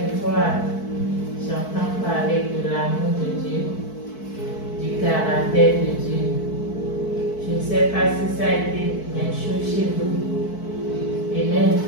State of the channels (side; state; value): right; late; 4.6 ms